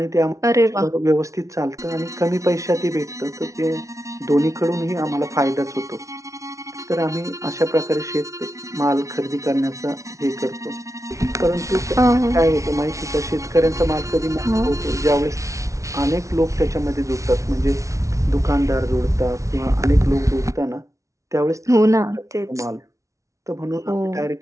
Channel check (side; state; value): left; late; 0.15 ms